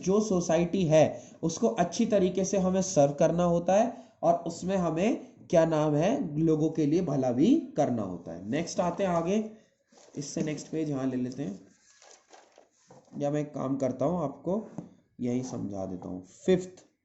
सोसाइटी है उसको अच्छी तरीके से हमें सर्व करना होता है, और उसमें हमें क्या नाम है, लोगों के लिए भला भी करना होता है। नेक्स्ट आते हैं आगे, इससे नेक्स्ट पेज यहाँ ले लेते हैं, या मैं एक काम करता हूँ आपको यही समझा देता हूँ। फिफ्थ,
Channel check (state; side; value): identical; both; correlation 1.00